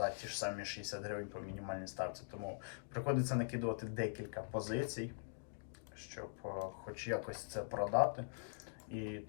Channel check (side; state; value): right; silent; digital silence